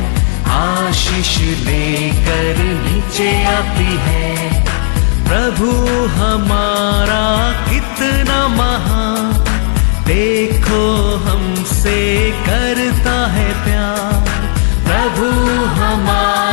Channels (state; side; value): silent; right; 62 dB below the other